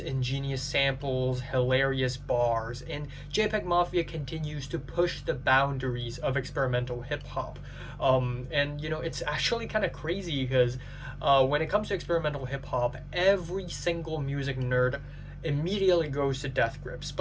samples, hilarious bars, and JPEGMAFIA continues to push the boundaries of experimental hip-hop. It's actually kind of crazy because when it comes to experimental hip-hop, every single music nerd immediately goes to Death Grips.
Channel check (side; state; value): both; identical; correlation 1.00